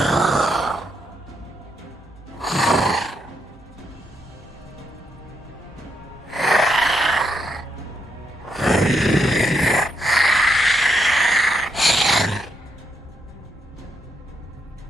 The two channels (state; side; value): normal; both; correlation 0.78